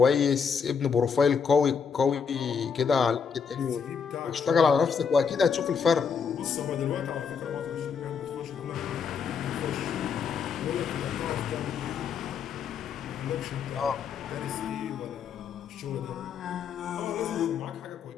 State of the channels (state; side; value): quieter; right; 6.2 dB